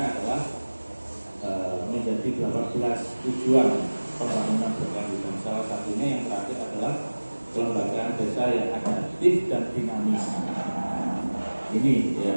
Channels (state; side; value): inverted; both; correlation -1.00